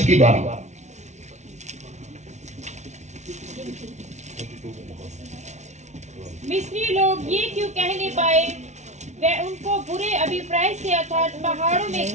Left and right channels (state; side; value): late; left; 0.33 ms